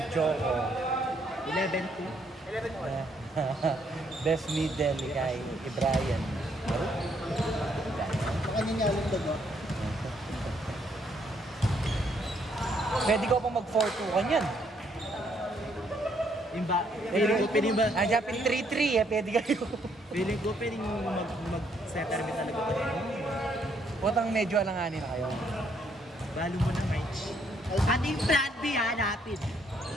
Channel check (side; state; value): both; normal; correlation 0.70